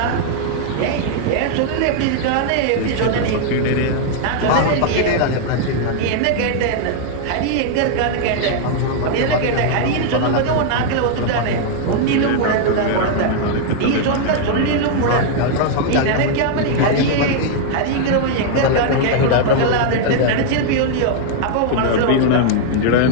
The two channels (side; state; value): both; different; correlation -0.01